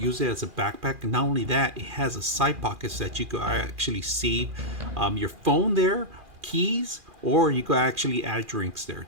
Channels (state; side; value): late; left; 2.4 ms